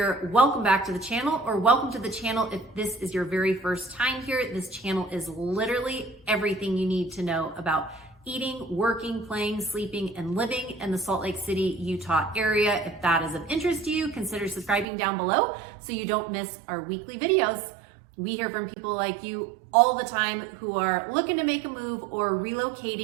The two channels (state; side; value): drops out; left; at 14.9 s